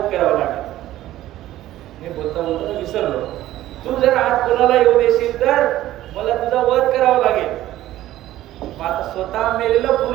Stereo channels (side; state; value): left; quieter; 14.4 dB